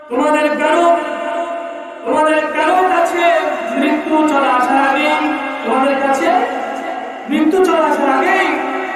তোমাদের কারো কাছে মৃত্যু চলে আসার আগেই, তোমাদের কাছে মৃত্যু চলে আসার আগেই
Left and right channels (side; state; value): both; identical; correlation 1.00